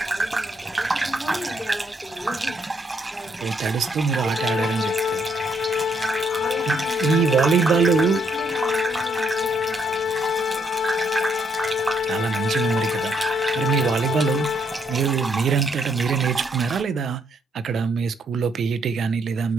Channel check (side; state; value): both; normal; correlation 0.72